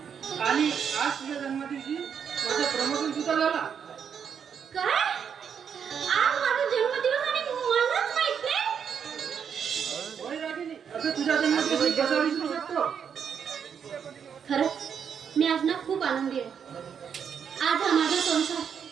आणि आज तुझ्या जन्मदिवशी माझं प्रमोशन सुद्धा झाला. काय? आज माझा जन्मदिवस आणि मलाच माहित नाही? होय रागिनी, असं तुझ्या जन्मदिवशी कसा विसरू शकतो. खरंच मी आज ना खूप आनंदी आहे. आज हा माझा संसार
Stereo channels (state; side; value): quieter; left; 7.4 dB